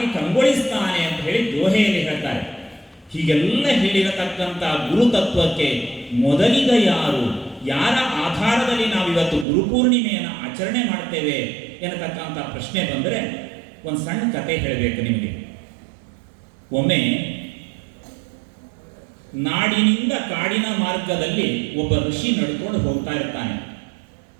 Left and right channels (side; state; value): left; drops out; at 9.5 s